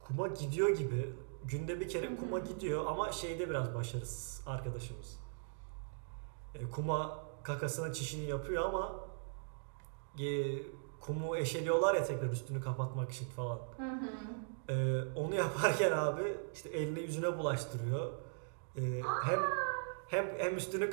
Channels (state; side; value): silent; left; digital silence